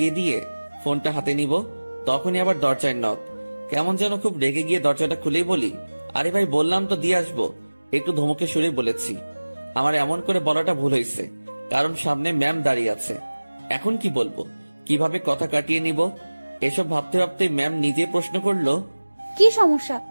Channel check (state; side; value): inverted; both; correlation -1.00